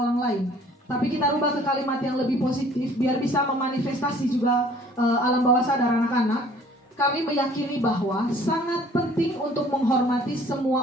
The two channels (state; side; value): normal; both; correlation 0.54